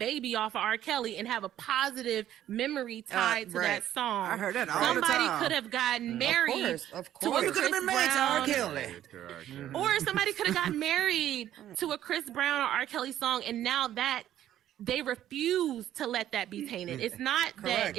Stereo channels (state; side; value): quieter; left; 11.9 dB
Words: off of R. Kelly and have a positive memory tied to that song. I heard that all the time. Somebody could have gotten married to a Chris Brown, or somebody could have gotten married to a Chris Brown or R. Kelly song, and now that they refuse to let that be tainted. It's not that